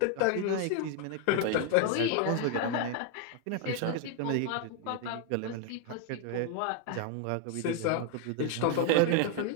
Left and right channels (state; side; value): different; both; correlation 0.00